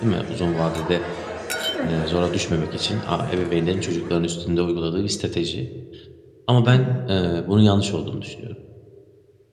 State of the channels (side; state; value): both; identical; correlation 1.00